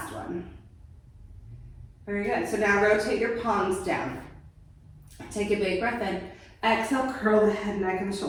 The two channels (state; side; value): identical; both; correlation 1.00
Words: one. Very good. So now rotate your palms down. Take a big breath in. Exhale, curl the head, neck, and